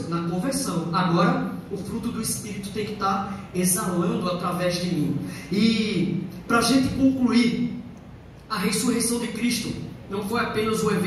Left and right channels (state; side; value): identical; both; correlation 1.00